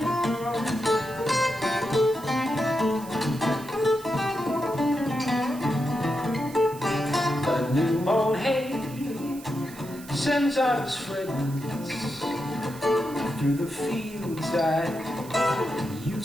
The new mown hay sends out its fragrance through the fields I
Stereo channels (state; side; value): noise; right; hiss, 18 dB below the sound